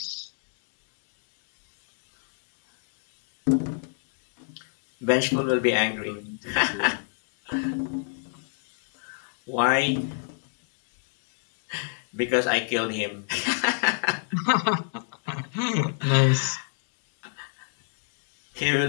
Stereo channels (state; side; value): silent; right; digital silence